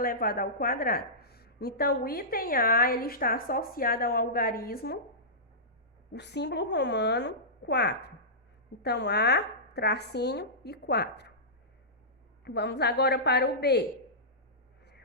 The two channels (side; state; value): both; normal; correlation -0.18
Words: ao quadrado. Então, o item A, ele está associado ao algarismo, o símbolo romano 4. Então, A, tracinho e 4. Vamos agora para o B.